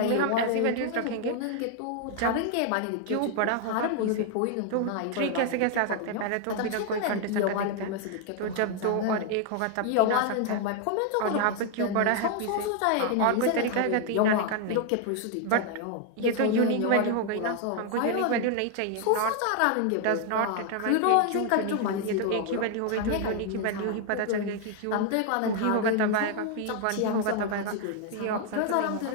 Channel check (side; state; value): both; different; correlation 0.00